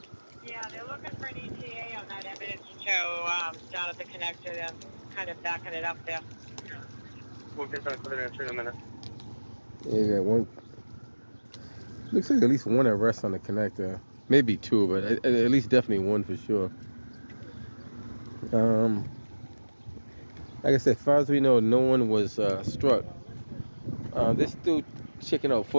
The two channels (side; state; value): both; inverted; correlation -1.00